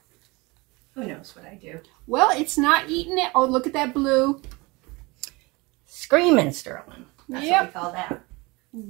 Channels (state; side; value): quieter; left; 24.8 dB